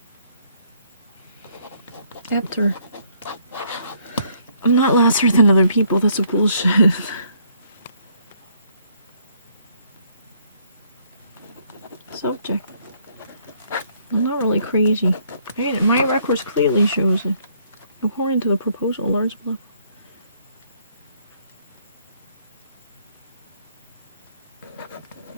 After. I'm not lesser than other people, that's a bullshit. Subject. I'm not really crazy. My records clearly shows it. According to the proposal, large block.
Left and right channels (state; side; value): inverted; both; correlation -0.67